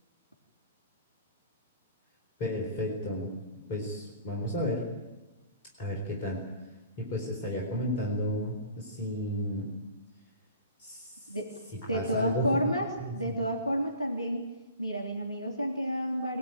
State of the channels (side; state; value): both; inverted; correlation -0.44